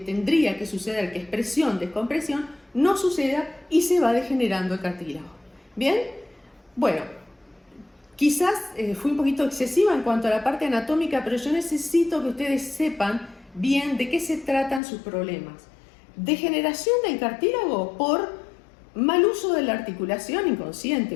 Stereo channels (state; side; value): drops out; right; at 14.8 s